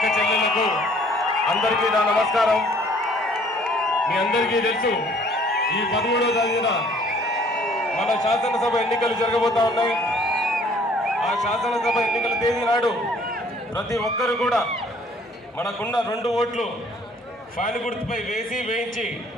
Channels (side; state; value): both; normal; correlation 0.58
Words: చెల్లెళ్లకు అందరికీ నా నమస్కారం. మీ అందరికీ తెలుసు, ఈ 13వ తేదీన మన శాసనసభ ఎన్నికలు జరగబోతా ఉన్నాయి. ఆ శాసనసభ ఎన్నికల తేదీ నాడు ప్రతి ఒక్కరు కూడా మనకున్న 2 ఓట్లు ఫ్యాన్ గుర్తుపై వేయించి